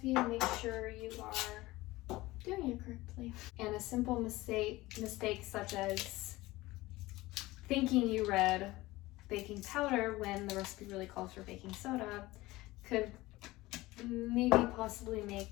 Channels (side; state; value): right; quieter; 19.1 dB